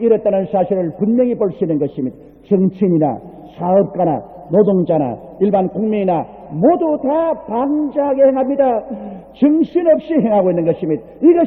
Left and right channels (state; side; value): identical; both; correlation 1.00